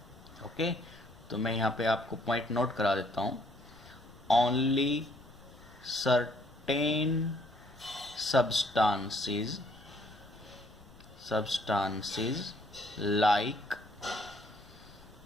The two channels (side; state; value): left; noise; rumble, 22 dB below the sound